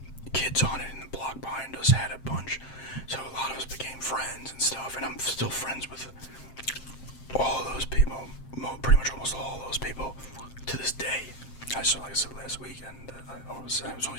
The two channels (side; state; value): right; late; 7.6 ms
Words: kids on it, and the block behind us had a bunch, so a lot of us became friends and stuff, and I'm still friends with all of those people, pretty much almost all of those people to this day. Like I said last weekend, it was only